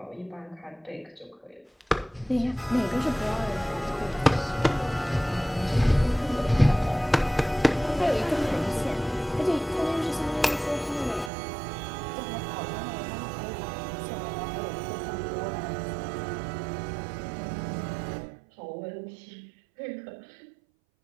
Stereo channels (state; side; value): drops out; left; at 11.3 s